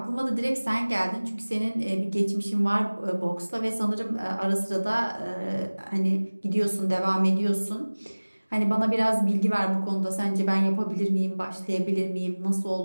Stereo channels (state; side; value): inverted; both; correlation -1.00